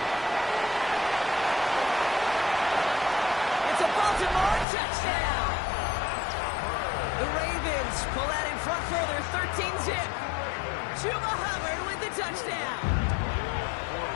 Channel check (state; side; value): drops out; right; at 4.7 s